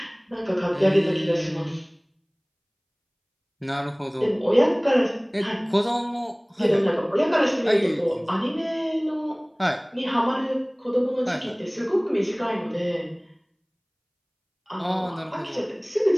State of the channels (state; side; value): identical; both; correlation 1.00